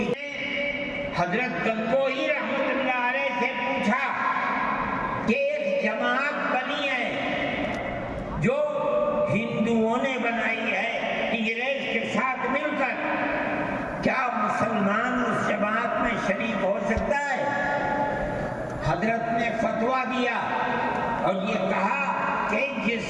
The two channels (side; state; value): both; identical; correlation 1.00